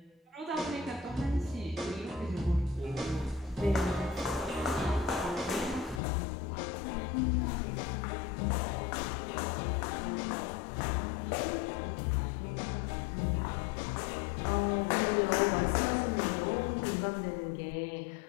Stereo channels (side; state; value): right; drops out; at 6.0 s